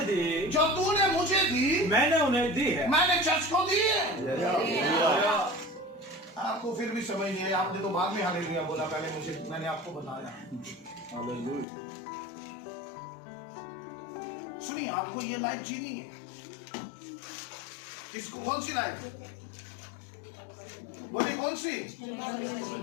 दी, जो तूने मुझे दी, मैंने उन्हें दी है। मैंने चर्च को दी है। आपको फिर भी समझ नहीं आया? आपने तो बाद में हालेलुया बोला, पहले मैंने आपको बताया। सुनिए, आपको ये लाइफ जीनी है। किसको? कौन सी लाइफ? बोले कौन सी?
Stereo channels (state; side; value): drops out; right; at 11.7 s